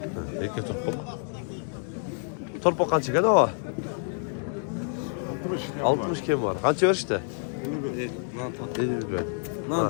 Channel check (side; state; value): right; silent; 59 dB below the other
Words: Erkek torpak. Torpak kaç gene o? 60 kim var? Kaç ver işte? 50 ver.